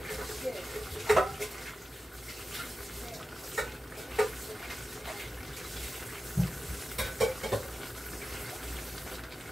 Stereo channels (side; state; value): both; normal; correlation 0.93